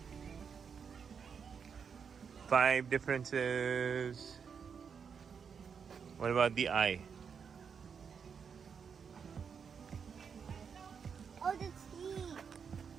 5 differences. What about the eye? Oh, the teeth.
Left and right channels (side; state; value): left; quieter; 6.5 dB